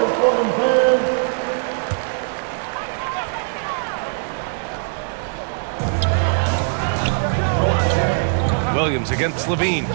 for them, fans. Williams against Levine.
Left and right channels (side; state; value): left; silent; digital silence